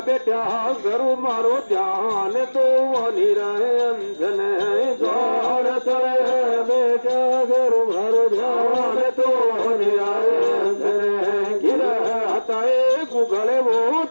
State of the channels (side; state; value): both; inverted; correlation -1.00